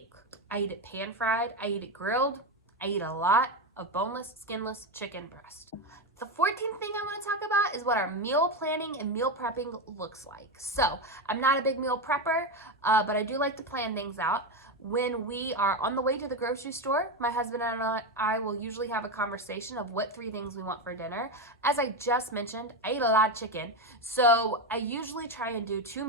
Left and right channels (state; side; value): normal; both; correlation 0.13